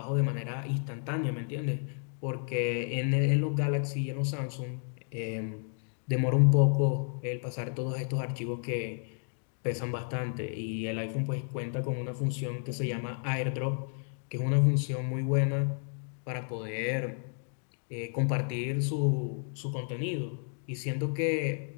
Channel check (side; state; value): right; silent; 57 dB below the other